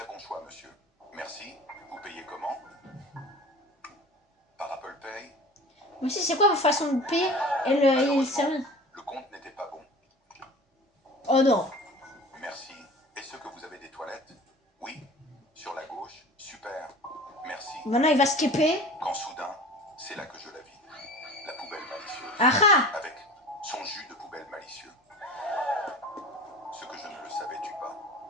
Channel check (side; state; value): both; normal; correlation 0.39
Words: bon choix, monsieur. Merci. Vous payez comment? Par Apple Pay? Mais si, c'est quoi votre façon de payer? Et le service? Le compte n'était pas bon. Oh non. Merci. Est-ce que vous avez des toilettes? Oui. Sur la gauche? Super. Merci. Maintenant, il va skipper. Quand soudain, c'est là que je la vis. La poubelle malicieuse. Ah ah! Avec son jus de poubelle malicieux. Ce que je ne le savais-tu pas,